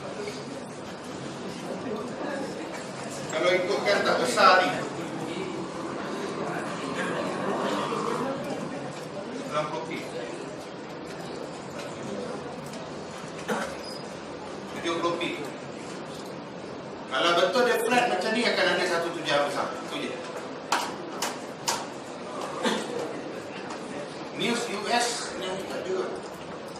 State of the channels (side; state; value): both; identical; correlation 1.00